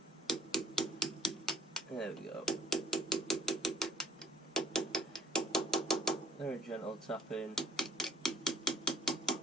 There we go. Very gentle tap in.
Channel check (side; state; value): both; normal; correlation 0.53